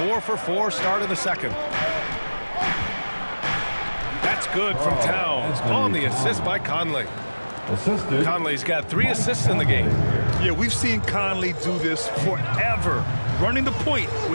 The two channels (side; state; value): both; inverted; correlation -1.00